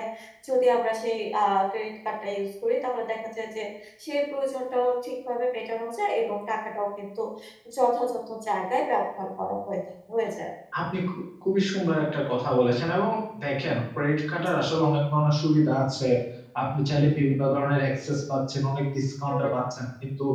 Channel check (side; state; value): both; identical; correlation 1.00